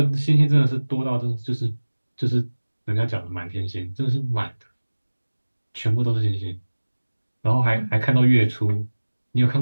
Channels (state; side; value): inverted; both; correlation -1.00